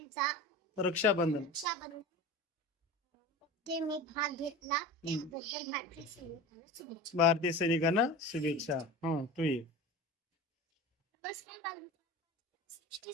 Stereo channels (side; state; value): both; normal; correlation 0.32